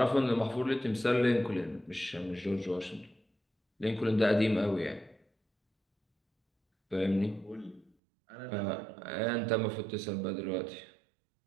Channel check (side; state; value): left; drops out; at 7.9 s